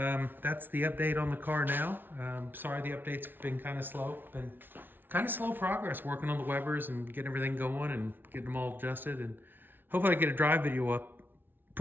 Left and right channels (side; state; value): left; late; 0.097 ms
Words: that's the update on the car now. Sorry the update's been kind of slow. Been kind of slow progress working on the Webers and getting everything going and getting them all adjusted, and hopefully I get a drive video up.